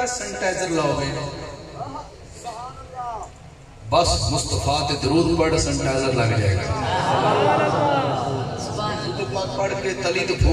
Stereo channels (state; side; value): identical; both; correlation 1.00